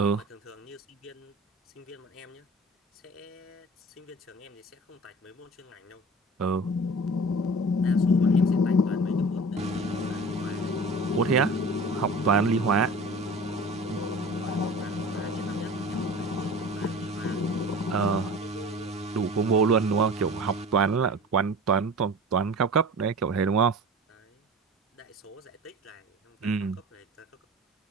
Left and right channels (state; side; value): normal; both; correlation 0.38